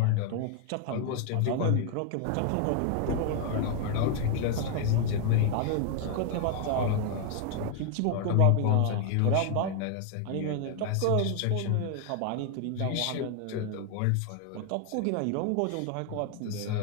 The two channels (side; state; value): both; different; correlation 0.00